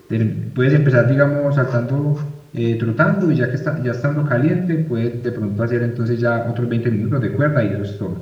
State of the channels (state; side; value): identical; both; correlation 1.00